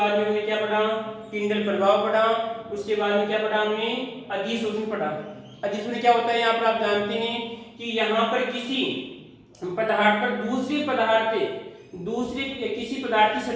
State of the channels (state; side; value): identical; both; correlation 1.00